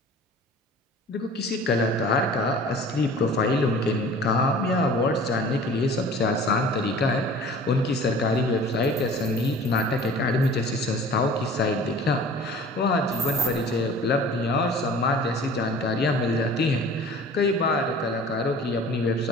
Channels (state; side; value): normal; both; correlation 0.45